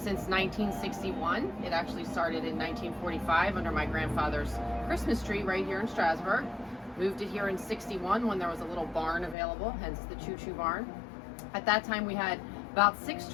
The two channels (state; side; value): drops out; right; at 9.3 s